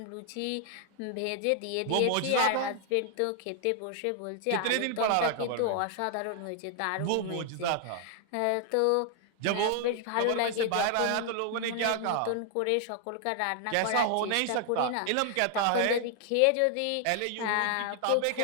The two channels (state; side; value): different; both; correlation 0.00